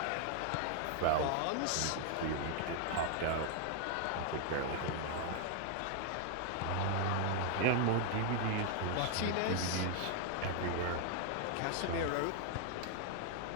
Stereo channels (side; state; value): both; different; correlation 0.00